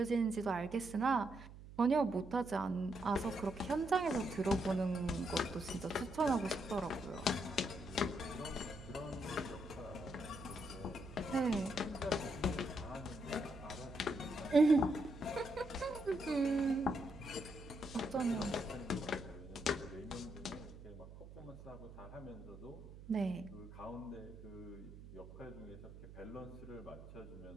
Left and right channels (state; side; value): noise; right; hum, 15 dB below the sound